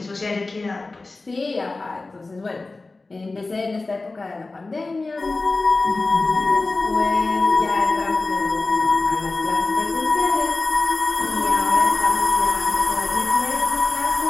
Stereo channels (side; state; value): right; quieter; 3.4 dB